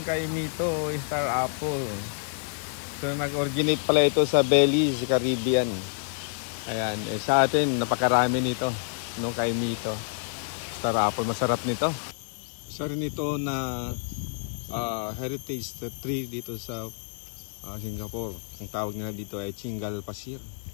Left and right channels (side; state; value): right; silent; digital silence